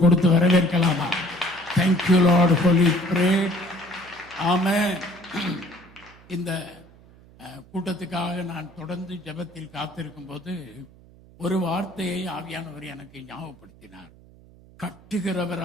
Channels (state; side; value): noise; right; hum, 24 dB below the sound